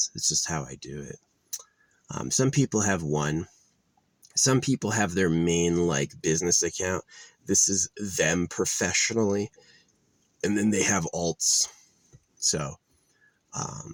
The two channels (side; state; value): both; identical; correlation 1.00